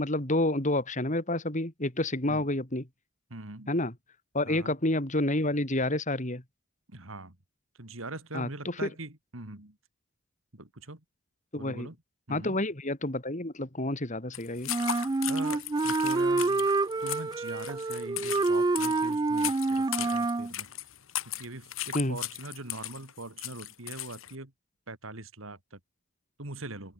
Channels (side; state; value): both; normal; correlation 0.47